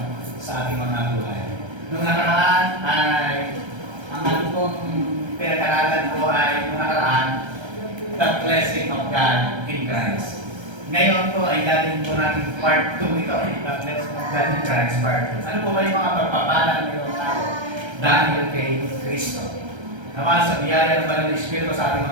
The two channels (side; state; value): left; late; 1.3 ms